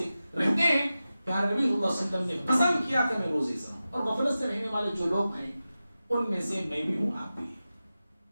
رہتے ہیں. پیارے نبی صلی اللہ علیہ وسلم نے پسند کیا کہ میں روزے سے رہوں. اور غفلت سے رہنے والے جو لوگ ہیں ان میں سے میں بھی ہوں, آپ بھی.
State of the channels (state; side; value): inverted; both; correlation -0.94